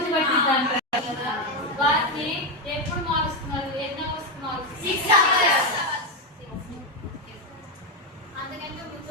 పట్టిద్దంటారు కదా, వాటిని ఎప్పుడు మారుస్తున్నారు, ఎన్ని అవర్స్ మారుస్తున్నారు? అందుకంటే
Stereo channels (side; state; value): both; normal; correlation 0.07